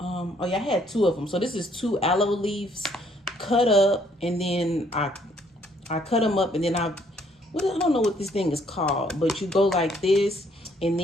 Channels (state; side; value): normal; both; correlation 0.66